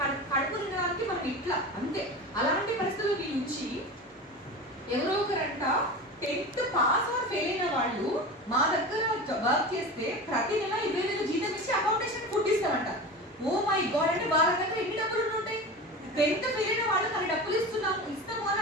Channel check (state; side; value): normal; both; correlation 0.30